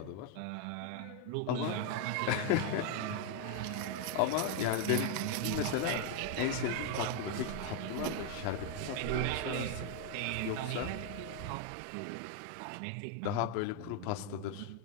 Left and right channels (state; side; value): different; both; correlation 0.01